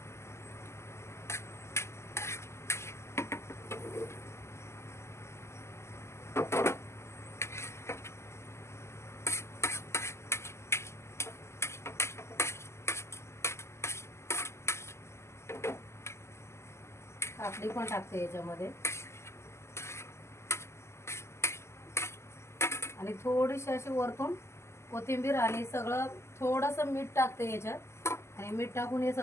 काकडी पण टाकते याच्यामध्ये आणि थोडीशी अशी वरतून कोथिंबीर आणि सगळं थोडंसं मीठ टाकते याच्यात. आणि मीठ टाकून हे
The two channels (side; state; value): right; late; 0.13 ms